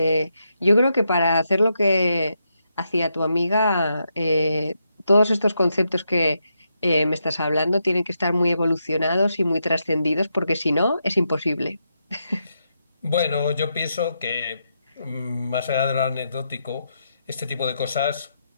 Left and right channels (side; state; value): both; inverted; correlation -0.83